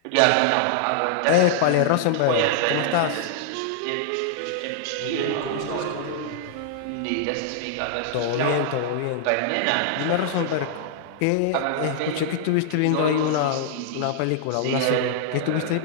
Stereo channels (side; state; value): both; different; correlation -0.01